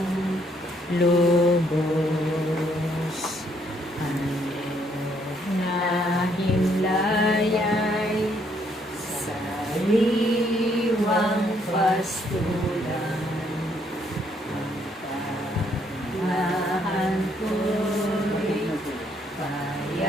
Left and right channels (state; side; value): normal; both; correlation 0.69